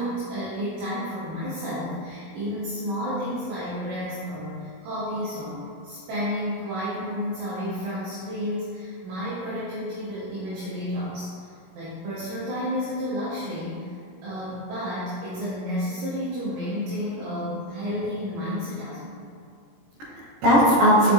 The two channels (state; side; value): late; left; 21 ms